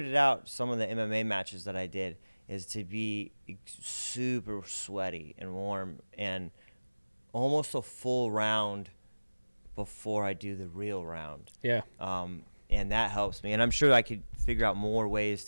it out. Some of the MMA matches that I did is to be super sweaty and warm and almost a full round before I do the real round. Yeah. And that helps me. And I'm sure I could figure out more ways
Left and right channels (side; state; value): both; inverted; correlation -1.00